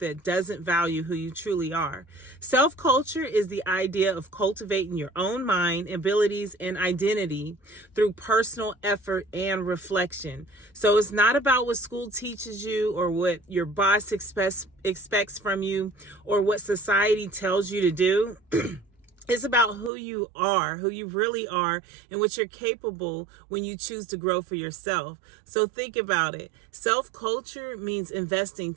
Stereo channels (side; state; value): left; drops out; at 19.9 s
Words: doesn't value who you truly are. Self-culture is the idea of cultivating your own mind, abilities, and identity through personal effort and reflection. So it's not about what school teaches you or what your boss expects from you or what society tells you to do. It's about who you are, who you really are, and what you're capable when you choose to grow for yourself. So think about it. Self-culture means investing